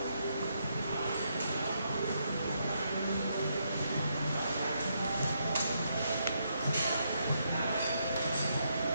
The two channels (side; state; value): both; inverted; correlation -0.77